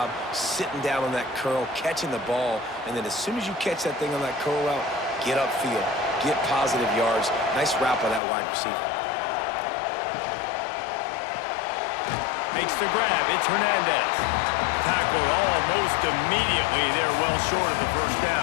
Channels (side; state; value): right; drops out; at 8.2 s